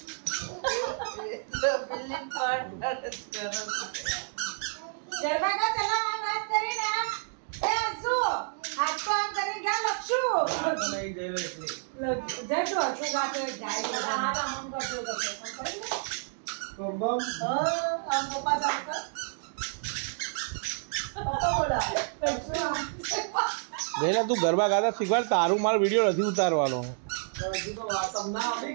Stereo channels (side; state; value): left; silent; digital silence